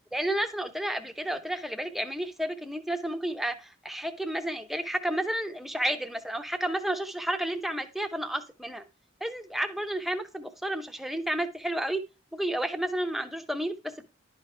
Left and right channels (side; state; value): both; normal; correlation 0.87